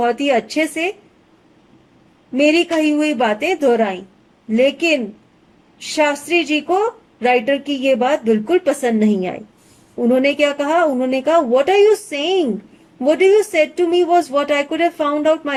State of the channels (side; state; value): both; identical; correlation 1.00